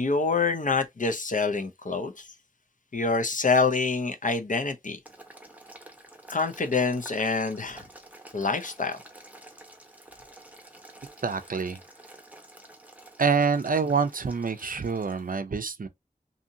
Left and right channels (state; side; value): normal; both; correlation 0.24